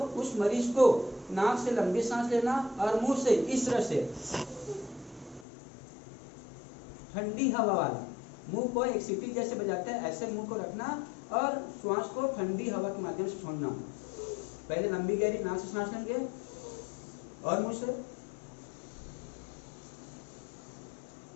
उस मरीज को नाक से लंबी सांस लेना और मुंह से इस तरह से ठंडी हवा वाला, मुंह को एक सीटी जैसे बजाते हैं ऐसे मुंह को रखना और श्वास को ठंडी हवा के माध्यम से छोड़ना। पहले लंबी गहरी नाक से सांस लेंगे और मुंह से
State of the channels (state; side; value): drops out; right; at 5.5 s